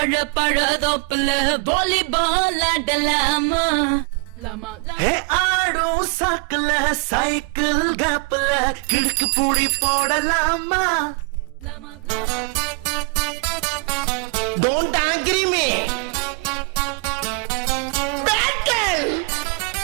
பழ தோப்புல வாலிபால் ஆடலாமா ஹே ஆடோ சாக்குல சைக்கிள் கேப்ல கிடுக்கு பூடி போடலாமா Don't agree me.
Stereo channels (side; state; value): left; quieter; 31.5 dB